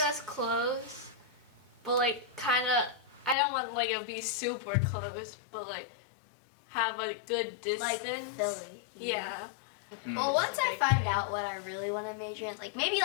that's close, but like kind of. I don't want like it to be super close, but like have a good distance. like Philly. you know? Yeah. Mm. Well, once It's a I big find thing. out what I really want to major in, like maybe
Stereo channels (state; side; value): drops out; right; at 3.4 s